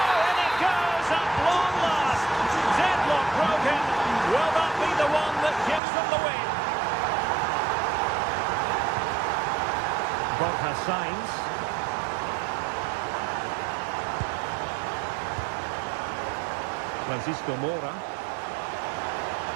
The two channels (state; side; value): drops out; left; at 5.8 s